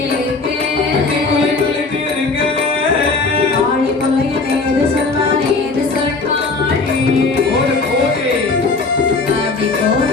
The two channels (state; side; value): quieter; right; 4.0 dB